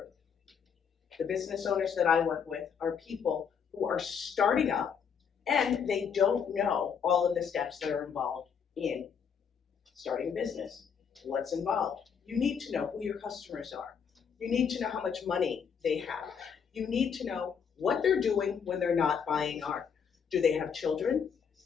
The business owners that I work with are people who are starting up and they don't know all of the steps that are involved in starting a business. What's involved? You need to know who your customers are. You need to know how much money they have. You need to know what they're doing when they're not buying art. Do they have children?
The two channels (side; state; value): right; quieter; 6.9 dB